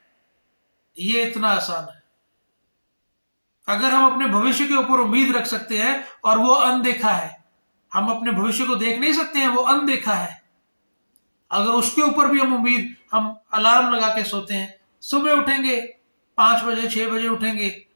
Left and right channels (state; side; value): inverted; both; correlation -1.00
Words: ये इतना आसान है। अगर हम अपने भविष्य के ऊपर उम्मीद रख सकते हैं और वो अनदेखा है, हम अपने भविष्य को देख नहीं सकते हैं, वो अनदेखा है, अगर उसके ऊपर भी हम अलार्म लगा के सोते हैं, सुबह उठेंगे 5 बजे 6 बजे उठेंगे